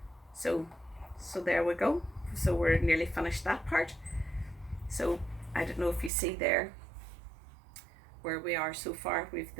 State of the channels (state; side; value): drops out; left; at 6.1 s